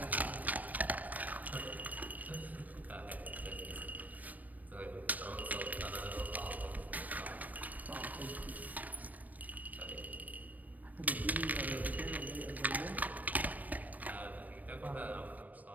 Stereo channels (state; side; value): late; left; 0.078 ms